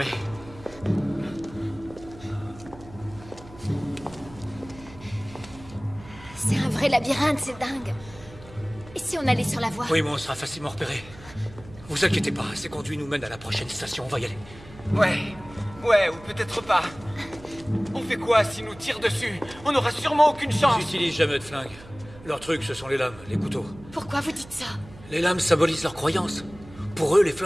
C'est un vrai labyrinthe, c'est dingue. Et si on allait sur la voie? Oui, mais on sera facilement repéré. Vous inquiétez pas, ces conduits nous mènent à la prochaine station, on va y aller. Ouais, ou peut-être pas. On fait quoi s'ils nous tirent dessus? On n'aura sûrement aucune chance. Ils n'utilisent jamais de flingue. Leur truc, ce sont les lames, les couteaux. Pourquoi vous dites ça? Les lames symbolisent leurs croyances. Pour eux, les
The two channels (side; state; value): right; noise; hum, 19 dB below the sound